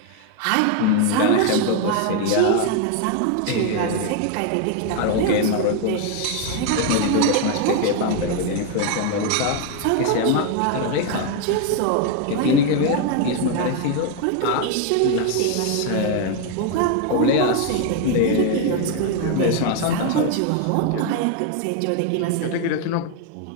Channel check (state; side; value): different; both; correlation 0.01